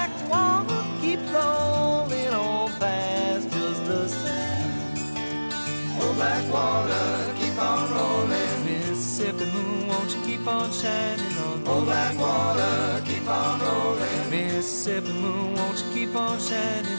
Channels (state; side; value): inverted; both; correlation -1.00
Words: water keep rolling on past just the same. Oh, black water, keep on rolling. Mississippi moon, won't you keep on shining on me? Oh, black water, keep on rolling. Mississippi moon, won't you keep on